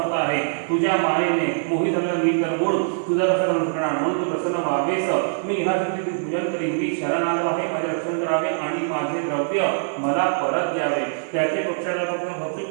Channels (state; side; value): silent; left; digital silence